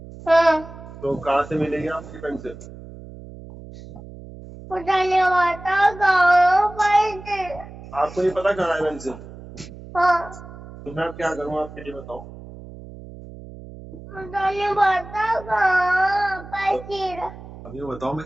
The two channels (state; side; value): noise; right; hum, 15 dB below the sound